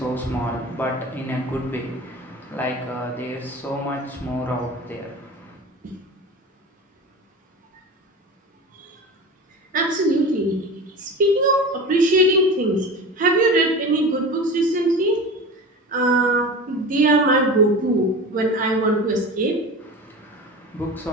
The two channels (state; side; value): normal; both; correlation 0.31